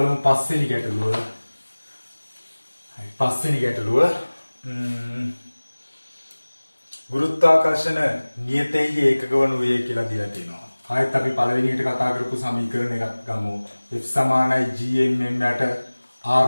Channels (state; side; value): inverted; both; correlation -1.00